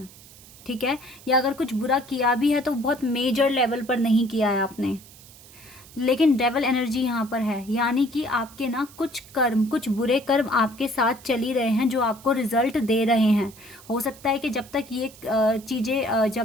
ठीक है, या अगर कुछ बुरा किया भी है तो बहुत मेजर लेवल पर नहीं किया है आपने। लेकिन डेवल एनर्जी यहाँ पर है, यानी कि आपके ना कुछ कर्म, कुछ बुरे कर्म आपके साथ चल ही रहे हैं जो आपको रिजल्ट दे रहे हैं। हो सकता है कि जब तक ये चीज़ें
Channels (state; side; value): noise; right; hiss, 21 dB below the sound